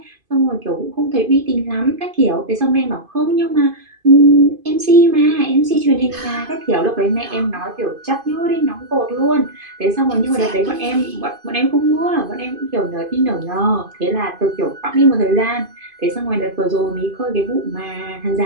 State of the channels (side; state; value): left; late; 2.5 ms